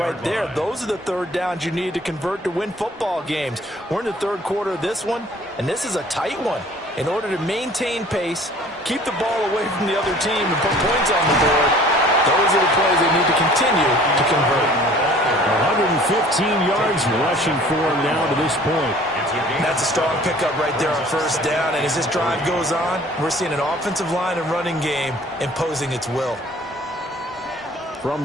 there. Those are the 3rd downs you need to convert to win football games. We're in the 3rd quarter of this one, and this is a tight one. In order to maintain pace, keep the ball away from the other team, and put points on the board, those are the plays they need to continue to convert. 115 yards rushing for him now to this point. That's a strong pickup right there on first down, and as this drive goes on, we're seeing an offensive line and running game imposing its will. From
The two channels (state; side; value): normal; both; correlation 0.51